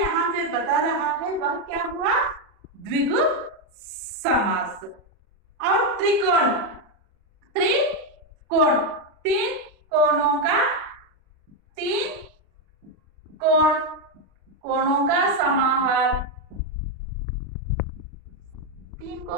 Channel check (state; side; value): late; left; 39 ms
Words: पे बता रहा है वह क्या हुआ, द्विगु समास। और त्रिकोण, त्रिकोण 3 कोणों का, 3 कोणों का समाहार। 3